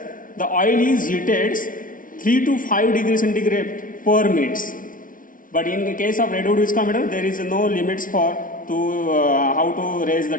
the oil is heated 3 to 5 degrees centigrade per minute. But in the case of Redwood viscometer, there is no limits for how to raise the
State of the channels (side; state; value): right; late; 0.39 ms